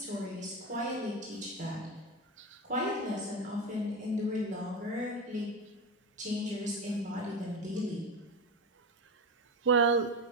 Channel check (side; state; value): both; normal; correlation 0.19